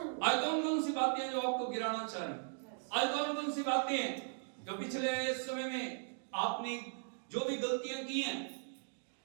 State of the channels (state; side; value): silent; left; digital silence